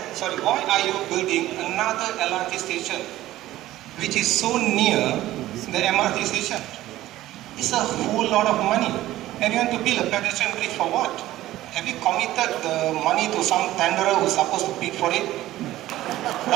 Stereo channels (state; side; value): quieter; left; 15.2 dB